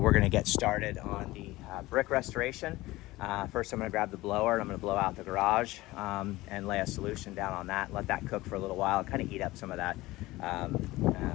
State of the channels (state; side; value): quieter; right; 18.9 dB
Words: we're gonna get started on the brick restoration. First, I'm gonna grab the blower and I'm gonna blow out the garage and lay a solution down on that, let that cook for a little while, kind of heat up some of that